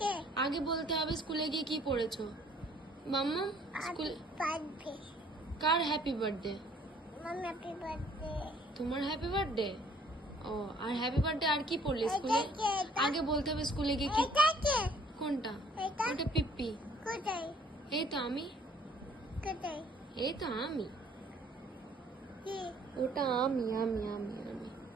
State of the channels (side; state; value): both; normal; correlation 0.59